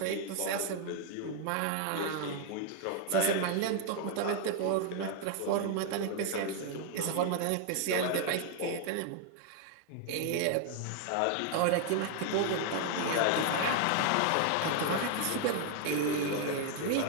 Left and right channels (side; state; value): both; different; correlation 0.00